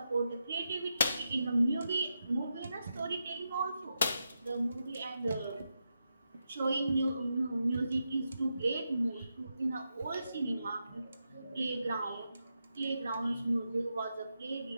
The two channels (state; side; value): inverted; both; correlation -0.86